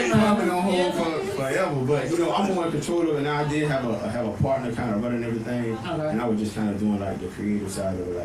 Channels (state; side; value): identical; both; correlation 1.00